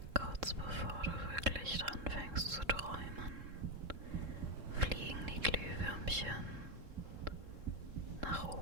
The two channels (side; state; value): left; late; 3.7 ms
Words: Kurz bevor du wirklich anfängst zu träumen, fliegen die Glühwürmchen nach